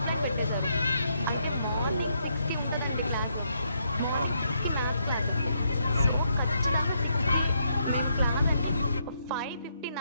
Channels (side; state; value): both; inverted; correlation -0.76